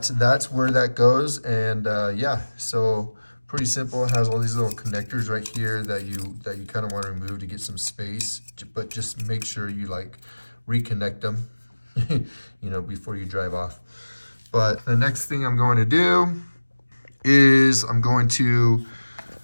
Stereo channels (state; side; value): inverted; both; correlation -1.00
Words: that's where that goes, and yeah, so pretty simple. It has all these little connectors right here that you kind of want to remove to get some space, but just make sure you like reconnect them, you know, before you drive off. But the next thing I'm going to do is I'm going to